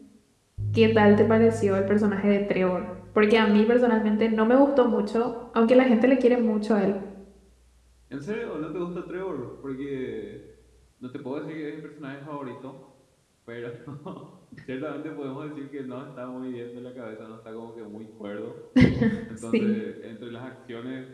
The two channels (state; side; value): identical; both; correlation 1.00